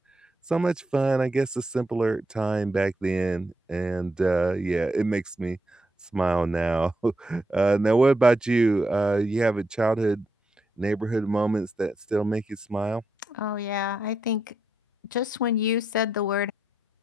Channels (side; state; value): both; normal; correlation 0.82